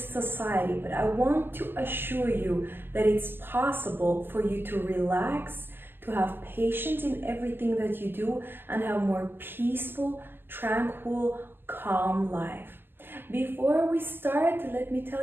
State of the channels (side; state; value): left; late; 0.098 ms